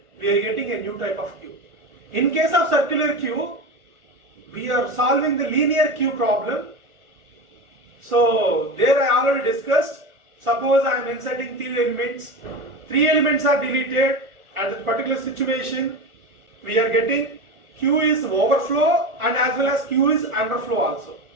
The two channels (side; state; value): left; late; 1.4 ms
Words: we are getting a new type of queue. In case of circular queue, we are solving the linear queue problem. So there I already discussed. Suppose I am inserting 3 elements. 3 elements are deleted. At that particular situation, we are getting queue is overflow and as well as queue is underflow also.